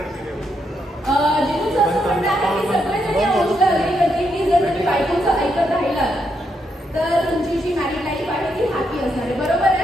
जिथून असं म्हणणं आहे की सगळेजण या गोष्टीला अग्री करतील की जर तुम्ही बायकोचं ऐकत राहिलात तर तुमची जी मॅरिड लाईफ आहे ती हॅपी असणार आहे. बरोबर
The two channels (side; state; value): both; normal; correlation 0.79